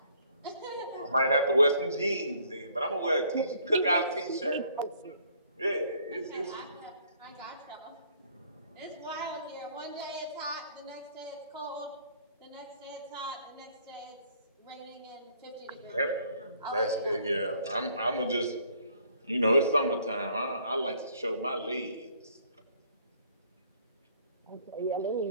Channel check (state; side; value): inverted; both; correlation -0.62